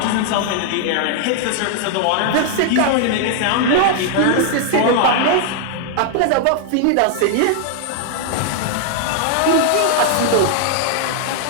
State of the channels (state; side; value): different; both; correlation 0.00